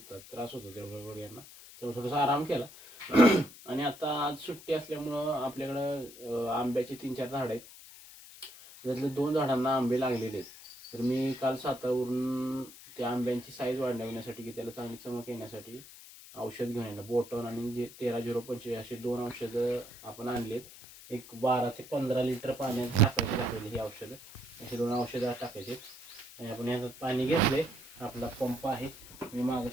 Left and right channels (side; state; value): left; noise; hiss, 17 dB below the sound